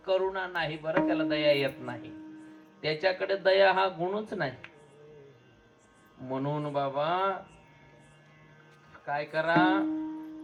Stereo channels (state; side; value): identical; both; correlation 1.00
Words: करुणा नाही बरं, त्याला दया येत नाही, त्याच्याकडे दया हा गुणच नाही. म्हणून बाबा काय करा,